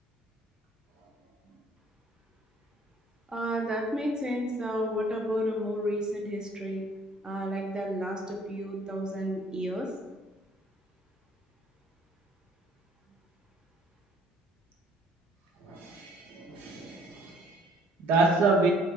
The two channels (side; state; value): both; normal; correlation 0.59